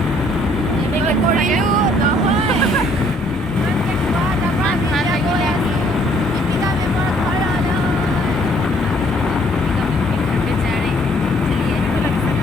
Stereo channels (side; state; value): both; normal; correlation 0.64